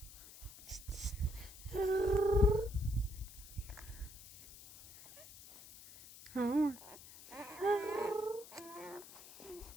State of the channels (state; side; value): noise; left; hiss, 17 dB below the sound